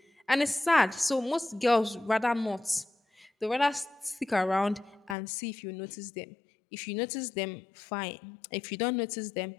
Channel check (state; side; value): drops out; right; at 5.2 s